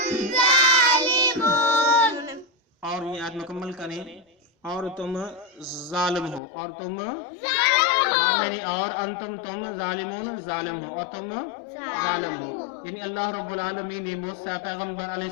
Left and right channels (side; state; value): right; drops out; at 6.4 s